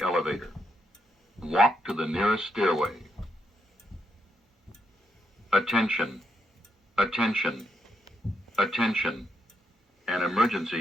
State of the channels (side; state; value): both; normal; correlation 0.80